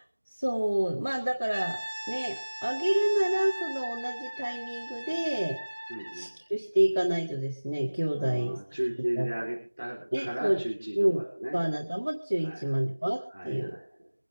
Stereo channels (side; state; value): both; inverted; correlation -1.00